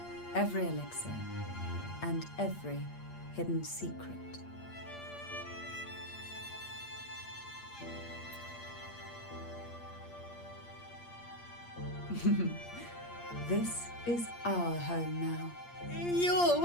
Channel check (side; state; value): right; late; 8.6 ms